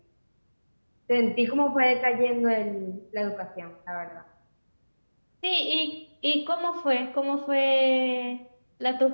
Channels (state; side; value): inverted; both; correlation -1.00